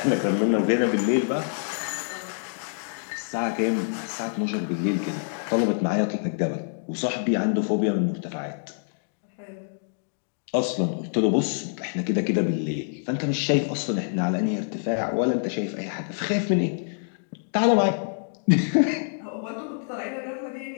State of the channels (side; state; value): right; silent; digital silence